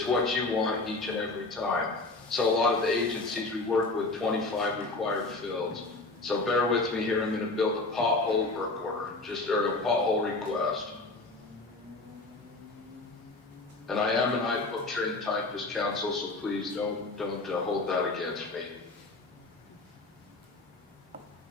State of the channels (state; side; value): quieter; right; 3.2 dB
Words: what you want each and every time. So a lot of the agencies we work with, 25 required fields. So bear with me here, I'm gonna build a pothole work order, or a pothole request. And I am an iBook trained typist, counsel, so please don't hold that against me.